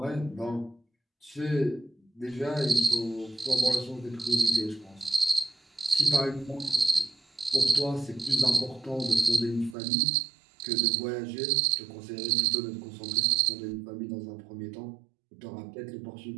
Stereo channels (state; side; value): drops out; left; at 9.8 s